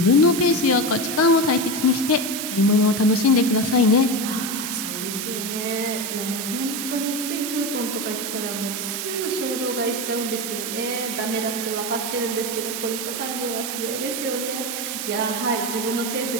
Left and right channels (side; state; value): right; noise; hiss, 4 dB below the sound